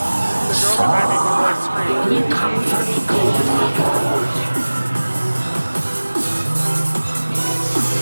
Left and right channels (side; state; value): both; inverted; correlation -1.00